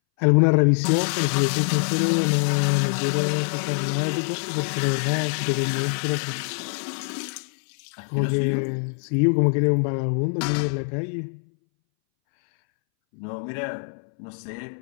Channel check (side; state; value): right; silent; 62 dB below the other